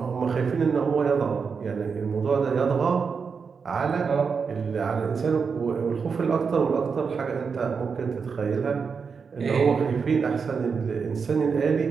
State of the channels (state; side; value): quieter; left; 5.6 dB